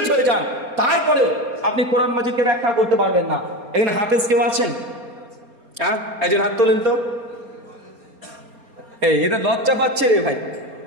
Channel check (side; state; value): left; late; 4.3 ms